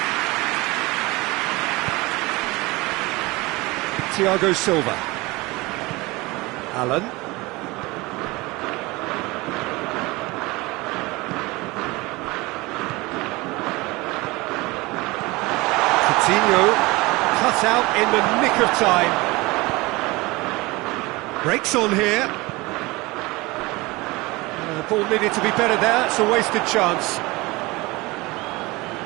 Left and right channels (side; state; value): left; quieter; 22.6 dB